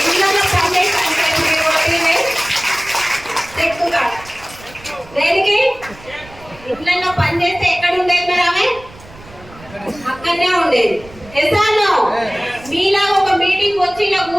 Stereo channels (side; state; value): right; noise; rumble, 21 dB below the sound